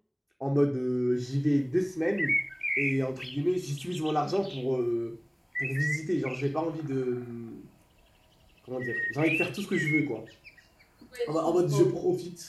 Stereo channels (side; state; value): both; identical; correlation 1.00